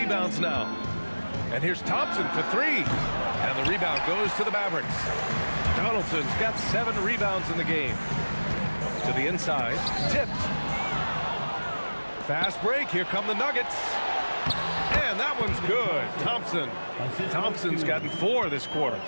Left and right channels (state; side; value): inverted; both; correlation -1.00